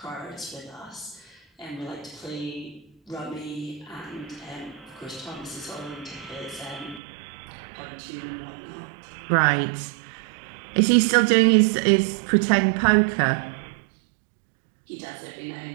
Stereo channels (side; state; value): left; drops out; at 7.0 s